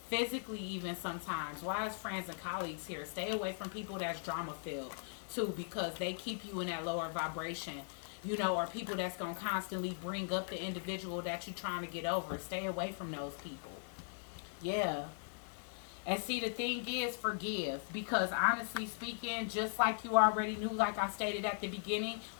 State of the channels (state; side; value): silent; right; 52 dB below the other